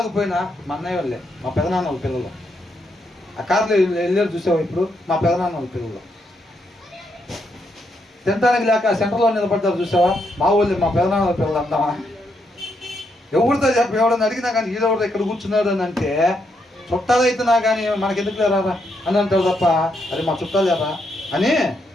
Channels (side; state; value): both; normal; correlation 0.78